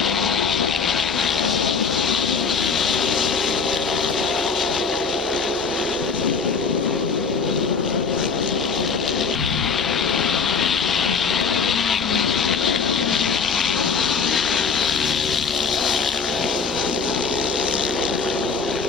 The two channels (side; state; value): right; quieter; 5.3 dB